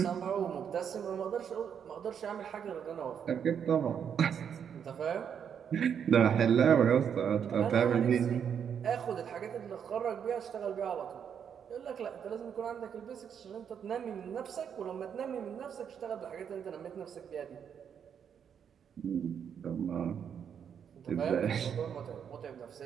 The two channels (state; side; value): quieter; left; 7.9 dB